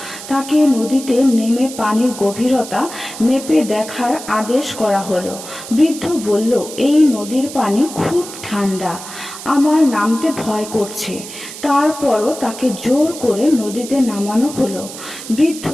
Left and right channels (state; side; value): noise; right; hiss, 12 dB below the sound